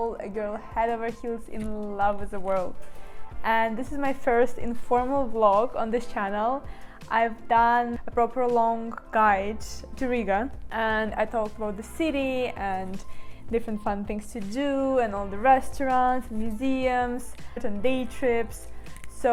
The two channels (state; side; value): identical; both; correlation 1.00